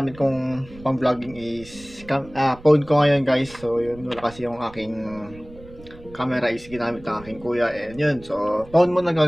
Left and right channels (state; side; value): noise; right; rumble, 20 dB below the sound